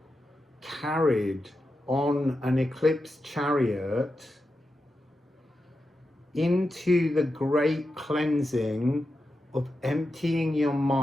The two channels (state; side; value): normal; both; correlation 0.89